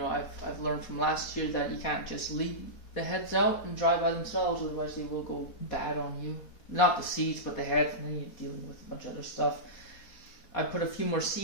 I've learned from last year that you can't just leave the heads out and dry by themselves, otherwise they will go bad on you. Not the seeds, but the head, and then you're dealing with a bunch of other stuff. I put a few more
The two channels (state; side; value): late; right; 4.2 ms